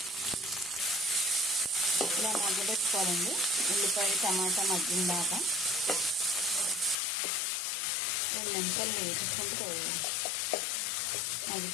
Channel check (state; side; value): drops out; right; at 7.0 s